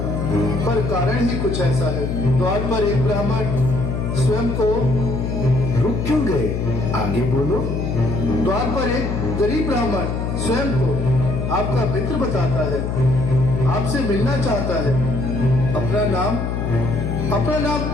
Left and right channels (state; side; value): noise; left; hum, 2 dB below the sound